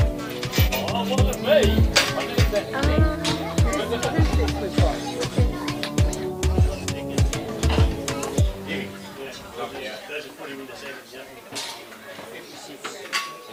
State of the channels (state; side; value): identical; both; correlation 1.00